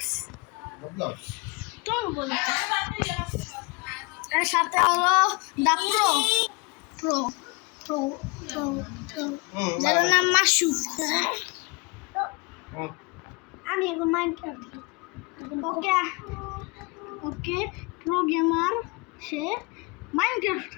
তো বলো, এর সাথে হলো দা প্রো প্রো প্রো প্রো যার নাম মাসুফ। আমি এখন মাইনক্রাফট ওকে প্রো গেমার, সে মাইনক্রাফট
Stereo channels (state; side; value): quieter; right; 28.0 dB